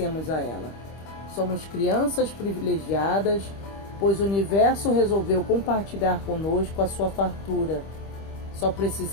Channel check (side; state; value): right; late; 25 ms